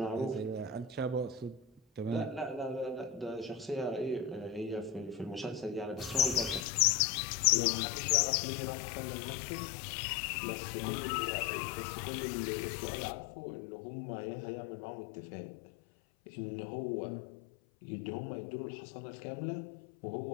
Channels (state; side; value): drops out; right; at 6.6 s